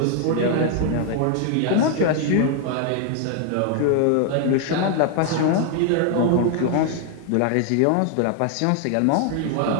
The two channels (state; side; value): different; both; correlation 0.00